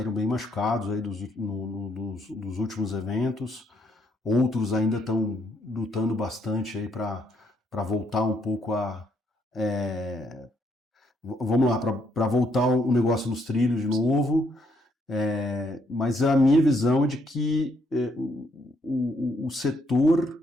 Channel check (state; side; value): normal; both; correlation 0.72